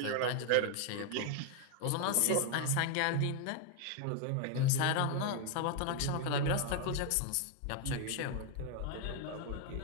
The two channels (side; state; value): both; different; correlation 0.01